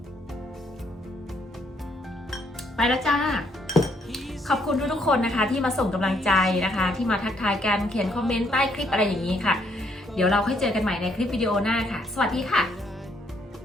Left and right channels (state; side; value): normal; both; correlation 0.71